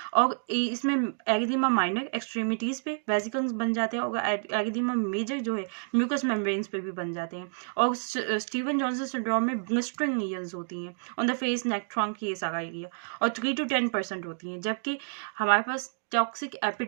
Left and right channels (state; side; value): silent; left; digital silence